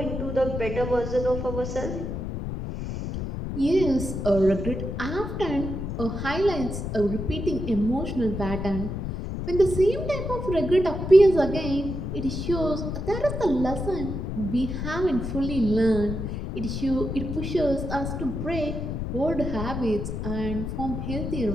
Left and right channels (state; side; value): noise; left; rumble, 4 dB below the sound